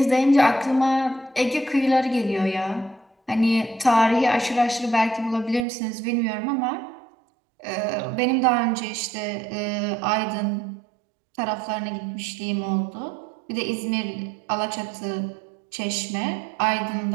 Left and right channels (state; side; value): drops out; left; at 5.7 s